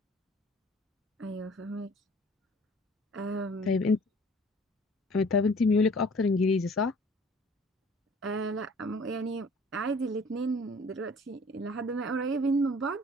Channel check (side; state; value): both; normal; correlation 0.52